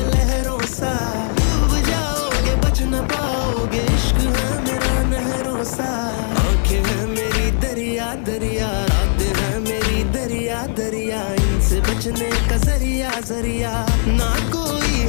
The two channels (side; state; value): right; silent; 60 dB below the other